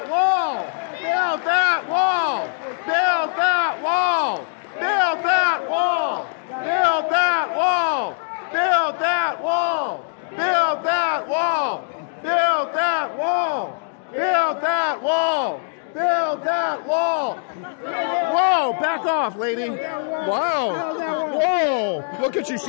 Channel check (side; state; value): right; silent; digital silence